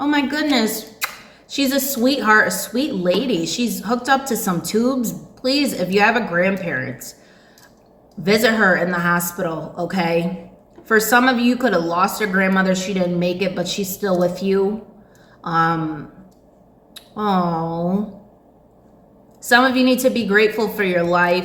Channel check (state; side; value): identical; both; correlation 1.00